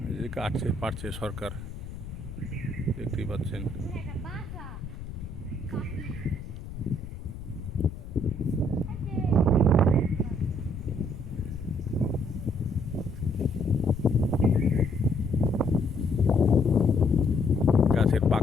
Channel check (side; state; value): left; noise; rumble, 11 dB below the sound